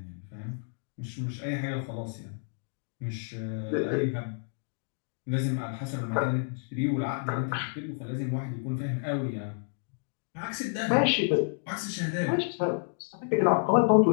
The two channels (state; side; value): silent; right; digital silence